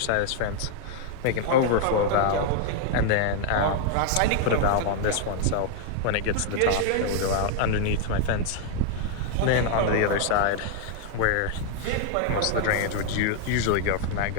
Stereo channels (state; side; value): different; both; correlation 0.00